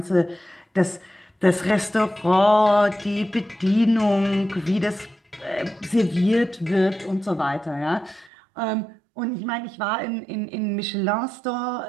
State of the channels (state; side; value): drops out; left; at 8.3 s